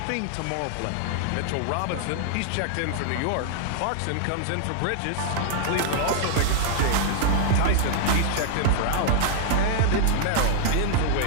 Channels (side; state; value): both; different; correlation -0.01